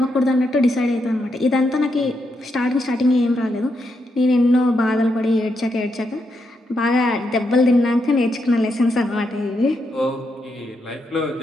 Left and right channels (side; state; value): both; normal; correlation 0.81